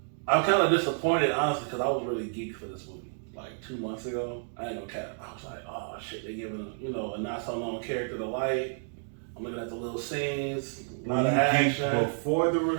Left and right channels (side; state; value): left; silent; 58 dB below the other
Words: I'm kind of disappointed, honestly, because I was really geeked for this movie. Like 2 months ago, I ain't gonna cap. I was like, oh shit, they giving a not so known character the light. I'm looking at the little scenes, a lot of action. Before the